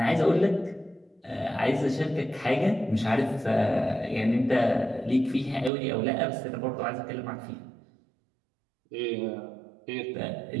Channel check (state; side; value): drops out; left; at 5.7 s